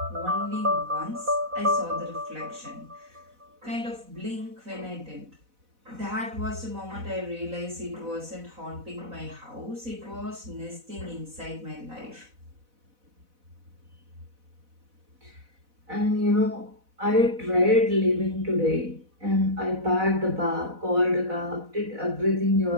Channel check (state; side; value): late; left; 4.0 ms